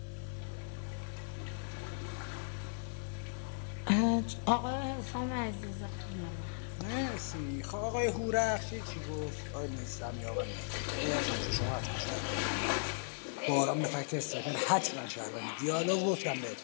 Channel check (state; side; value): silent; right; digital silence